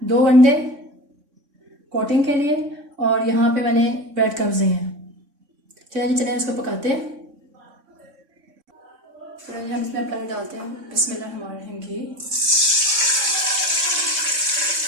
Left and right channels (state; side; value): late; left; 3.6 ms